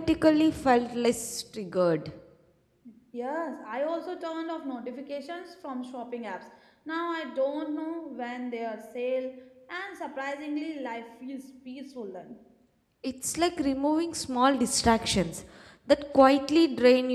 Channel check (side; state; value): both; identical; correlation 1.00